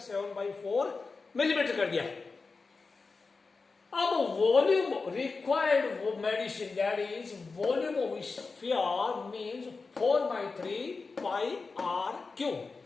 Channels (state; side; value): quieter; right; 4.3 dB